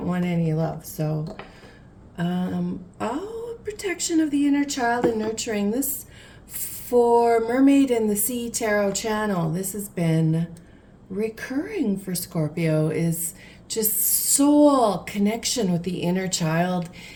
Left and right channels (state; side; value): identical; both; correlation 1.00